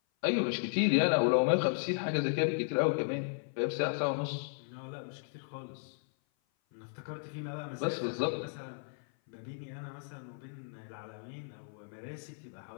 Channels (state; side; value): silent; right; 55 dB below the other